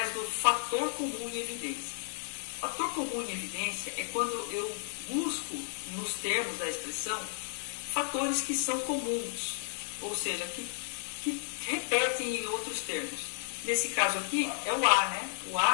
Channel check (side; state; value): right; silent; digital silence